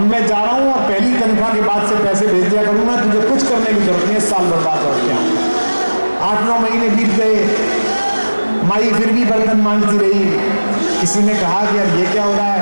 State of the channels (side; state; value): both; inverted; correlation -1.00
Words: मैं जा रहा हूं और पहली तनख्वाह के बाद से पैसे भेज दिया करूंगा, तुझे कुछ करने की जरूरत नहीं है, साल भर बाद लौट के आऊं। 8-9 महीने बीत गए। माई फिर भी बर्तन मांगती रही। किसी ने कहा कि यार ये क्या हो रहा है?